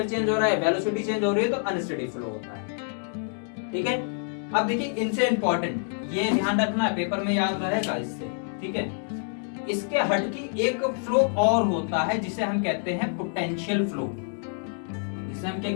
चेंज हो रहा है, वेलोसिटी चेंज हो रही है, तो अनस्टडी फ्लो होता है, ठीक है। अब देखिए इनसे इंपॉर्टेंट, ये ध्यान रखना है, पेपर में याद रहेगा इससे, ठीक है। इसके हटके एक फ्लो और होता है जिसे हम कहते हैं पोटेंशियल फ्लो, जिसे हम क्या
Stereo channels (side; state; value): right; silent; 60 dB below the other